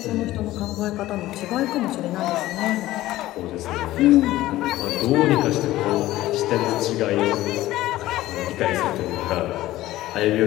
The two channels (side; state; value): right; quieter; 15.9 dB